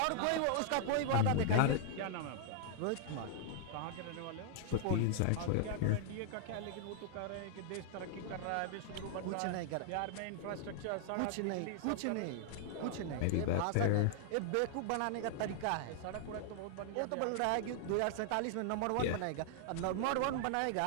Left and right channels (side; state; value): both; different; correlation -0.01